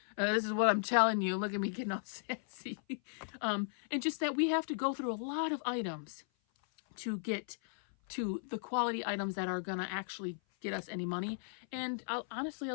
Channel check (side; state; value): right; silent; 54 dB below the other